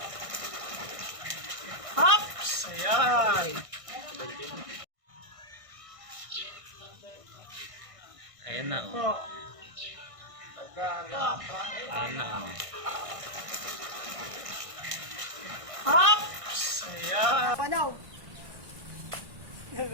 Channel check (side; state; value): left; late; 1.6 ms